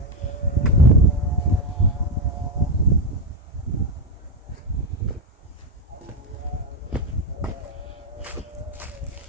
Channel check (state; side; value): normal; both; correlation 0.09